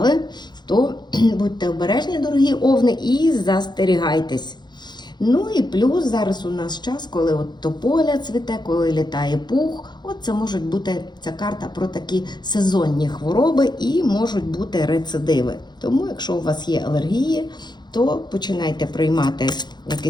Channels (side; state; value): right; late; 0.21 ms